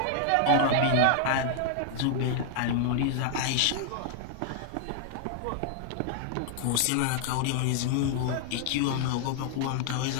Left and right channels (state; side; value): different; both; correlation -0.01